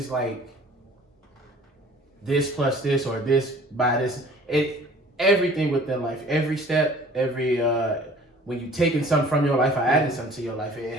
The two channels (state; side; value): normal; both; correlation 0.50